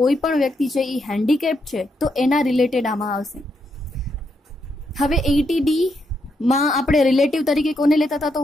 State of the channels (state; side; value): normal; both; correlation 0.79